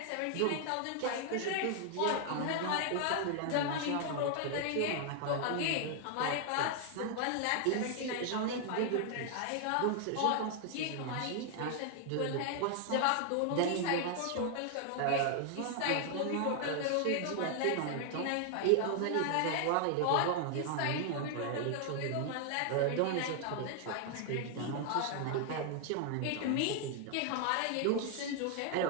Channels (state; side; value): different; both; correlation 0.00